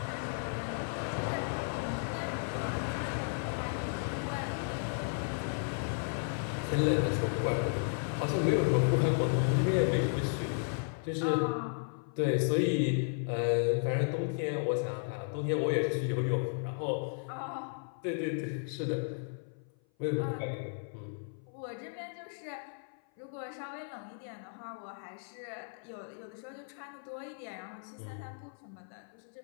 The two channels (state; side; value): silent; right; 55 dB below the other